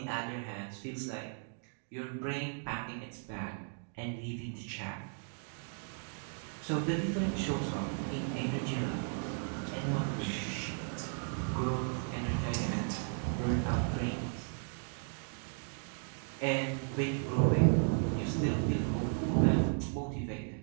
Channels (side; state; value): left; silent; 54 dB below the other